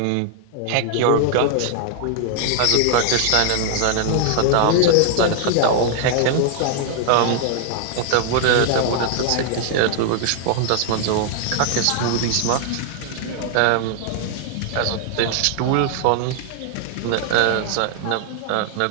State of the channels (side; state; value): both; different; correlation -0.01